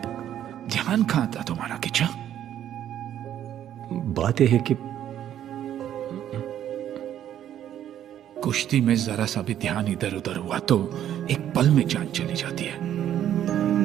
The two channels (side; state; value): left; quieter; 10.9 dB